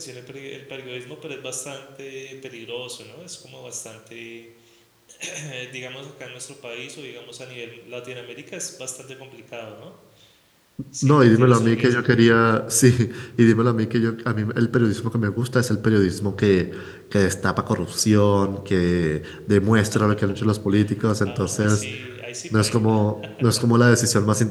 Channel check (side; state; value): both; identical; correlation 1.00